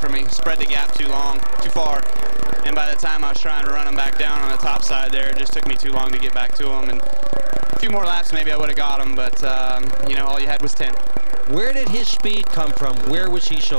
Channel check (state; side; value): inverted; both; correlation -1.00